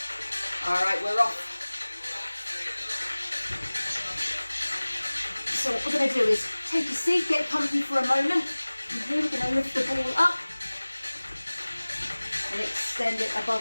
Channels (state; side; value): inverted; both; correlation -1.00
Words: Alright, we're off. So what we're going to do is take a seat, get comfy for a moment. And here we're going to lift the ball up and extend it